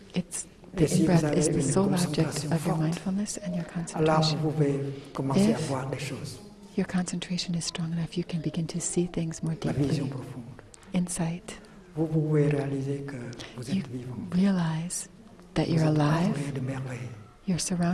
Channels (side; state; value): both; identical; correlation 1.00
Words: The in-breath is the sole object of your mindfulness and your concentration. If your concentration is strong enough, you can begin to see things more deeply. Insight. You realize that you're alive, you're